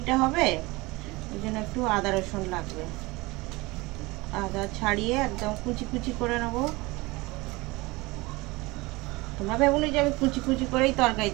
হবে, ওই জন্য একটু আদা রসুন লাগবে। আদা ছাড়িয়ে একদম কুচি কুচি করে নেবো। তোমরা ভেবুনি যে আমি কুচি কুচি করেই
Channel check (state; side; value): quieter; left; 22.7 dB